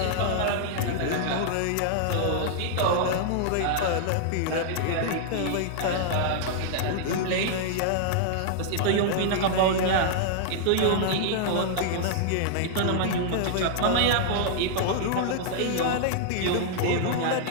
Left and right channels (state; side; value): different; both; correlation -0.01